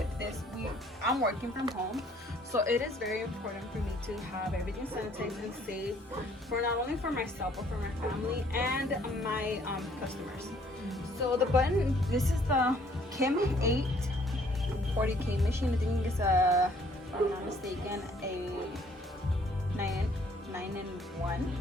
I'm working from home, so it is very important for me to have everything sanitized and safe, for not only for myself but for my family and my customers. So the button, this is the Kim 8 40K machine. I think it's a, if I'm not mistaken, a 9-in-1.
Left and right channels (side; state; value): both; normal; correlation 0.61